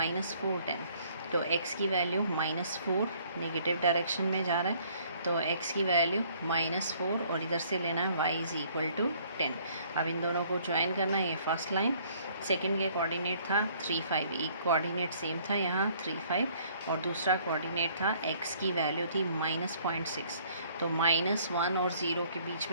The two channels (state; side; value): inverted; both; correlation -0.60